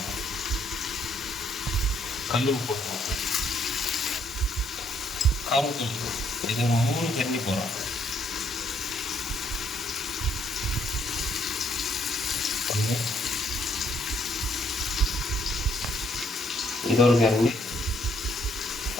கல்லூர் போட்டுருவோம். காரத்தூள் இது 3 கரண்டி போடுறோம். இது ஒரு கரண்டி,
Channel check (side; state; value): both; normal; correlation 0.69